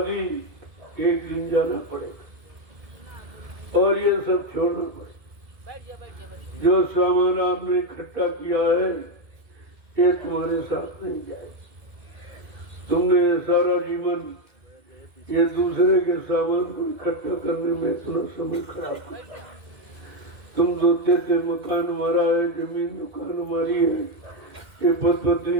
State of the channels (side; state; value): left; late; 2.2 ms